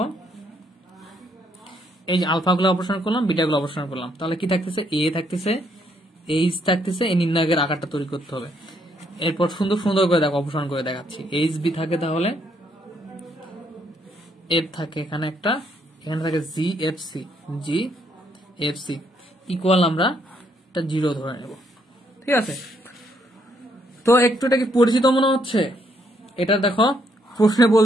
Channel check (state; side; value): normal; both; correlation 0.72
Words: এই যে আলফা গুলো অপসারণ করলাম, বিটা গুলো অপসারণ করলাম, তাহলে কি থাকতেছে? এ থাকতেছে, এইচ থাকতেছে, এই নির্ণায়কের আকারটা তৈরি করতে হবে। এরপর সুন্দর করে দেখো, অপসারণ করে দেখাচ্ছি। এইচ বি থাকে, তাহলে এফ থাকে এখানে একটা, এখানে থাকে জি এফ সি ইকুয়াল আমরা একটা জিরো ধরে নেব, ঠিক আছে। তো একটু এটা কি পরিচিত মনে হচ্ছে? এটা দেখো প্রশ্নে